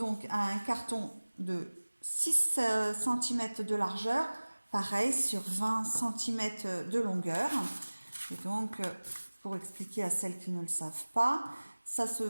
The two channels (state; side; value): inverted; both; correlation -1.00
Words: un carton de 6 cm de largeur. Pareil, sur 20 cm de longueur. Et donc, pour expliquer à celles qui ne le savent pas, ça se